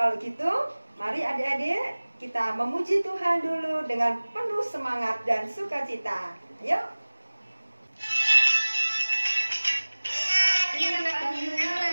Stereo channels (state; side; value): inverted; both; correlation -1.00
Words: gitu, mari adik-adik kita memuji Tuhan dulu dengan penuh semangat dan sukacita. Ayo.